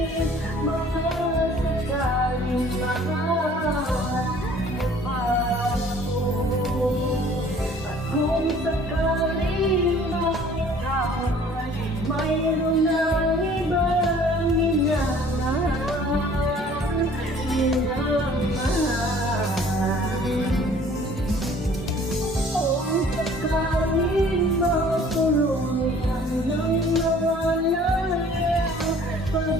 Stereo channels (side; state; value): both; normal; correlation 0.53